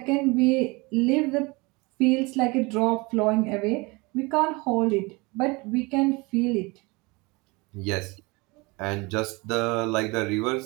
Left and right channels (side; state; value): left; quieter; 25.8 dB